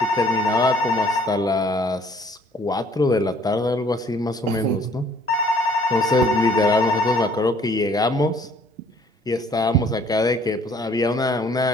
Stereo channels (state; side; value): normal; both; correlation 0.59